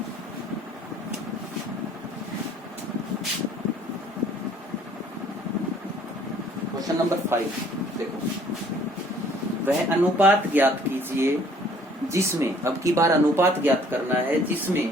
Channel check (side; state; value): both; normal; correlation 0.58